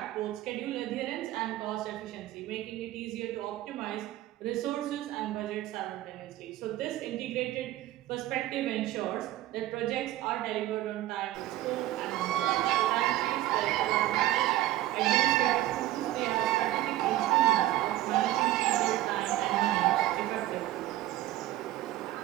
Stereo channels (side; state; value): left; quieter; 15.0 dB